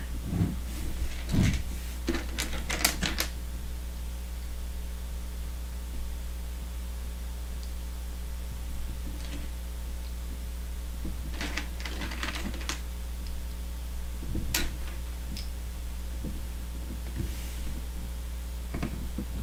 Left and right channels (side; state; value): both; identical; correlation 1.00